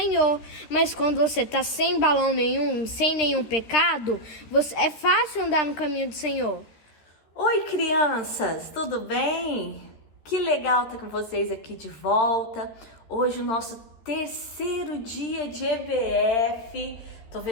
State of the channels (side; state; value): right; late; 13 ms